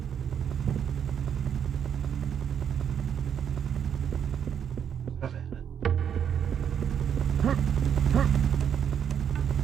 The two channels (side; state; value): left; quieter; 8.3 dB